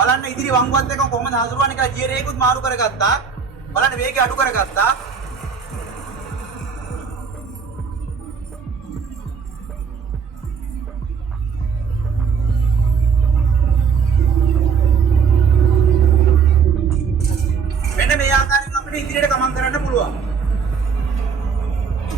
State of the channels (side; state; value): left; quieter; 6.1 dB